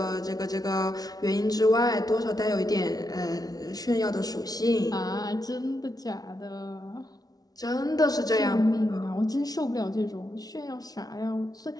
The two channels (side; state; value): right; late; 0.19 ms